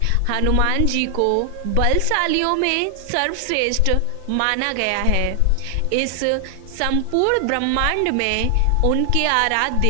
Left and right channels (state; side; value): different; both; correlation 0.00